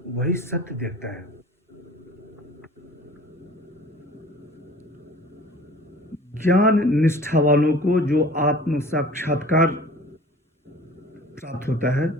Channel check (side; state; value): both; normal; correlation 0.45